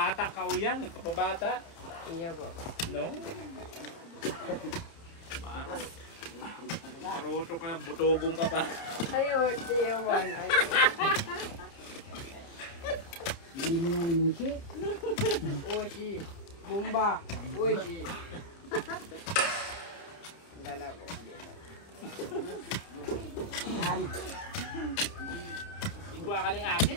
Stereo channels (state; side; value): late; right; 30 ms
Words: ka o yan. Kapabata. Iya po. No? Paruto ka lang, butogong ka pa. Ayun, tiyawan. Hindi mo nga nisi. Oshi. Bumba. Oshi. Dala po. Yan. Igwa ka ng akin